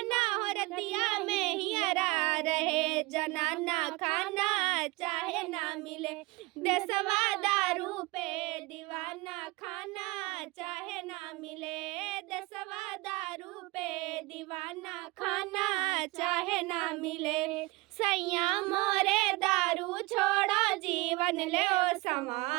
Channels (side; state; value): left; quieter; 22.9 dB